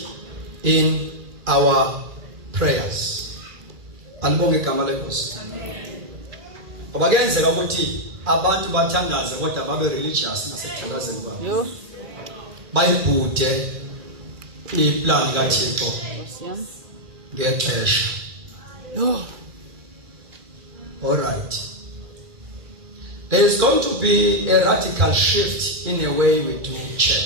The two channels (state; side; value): late; left; 2.4 ms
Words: in our prayers. Alibonge igama lenkosi. Obagenzeka ukuthi abantu bathandaze kodwa babe religious nasekuthandazeni kwabo. Bayibhude iplan kaThixo ngexesha. All right. There is going to be a radical shift in the way we do